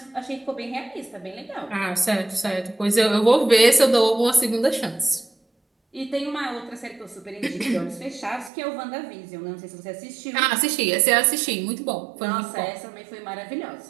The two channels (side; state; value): left; drops out; at 8.5 s